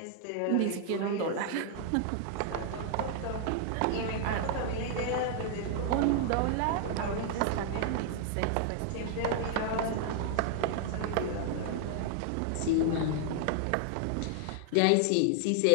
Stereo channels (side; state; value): both; different; correlation 0.00